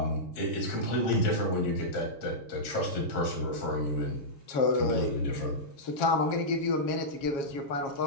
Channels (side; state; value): right; late; 7.4 ms